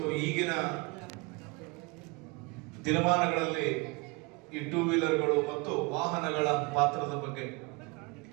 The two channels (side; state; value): left; quieter; 27.5 dB